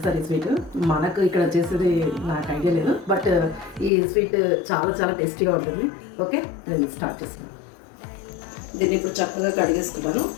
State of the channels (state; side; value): drops out; right; at 3.9 s